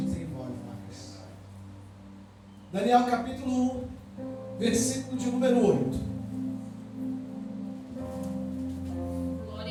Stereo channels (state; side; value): identical; both; correlation 1.00